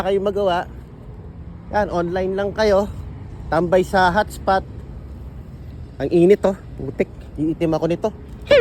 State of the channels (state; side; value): identical; both; correlation 1.00